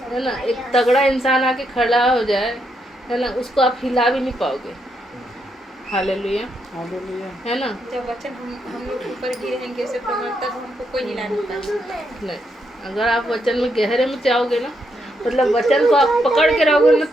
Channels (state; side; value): normal; both; correlation 0.79